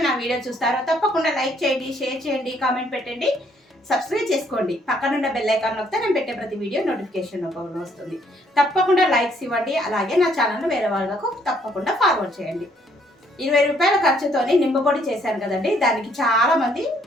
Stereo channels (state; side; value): normal; both; correlation 0.67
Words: నా వీడియో చూస్తారో తప్పకుండా లైక్ చేయండి, షేర్ చేయండి, కామెంట్ పెట్టండి, సబ్స్క్రైబ్ చేసుకోండి. పక్కనున్న బెల్ ఐకాన్ నొక్కితే నేను పెట్టే ప్రతి వీడియో నోటిఫికేషన్ రూపంలో వస్తుంది. తప్పకుండా లైక్స్ ఇవ్వండి. అలాగే నా ఛానల్ వేరే వాళ్ళకు తప్పకుండా ఫార్వర్డ్ చేయండి. 20 రూపాయల ఖర్చుతోని నిమ్మపొడి చేశాను కదండి. దానికి చాలా మంది